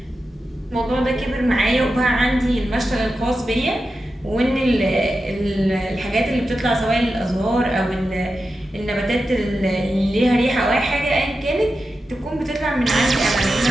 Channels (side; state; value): both; normal; correlation 0.91